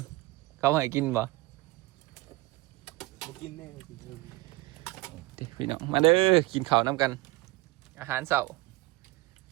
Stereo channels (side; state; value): left; quieter; 20.8 dB